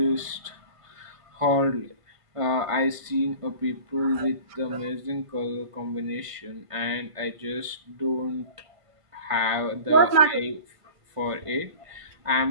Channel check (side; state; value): left; late; 1.5 ms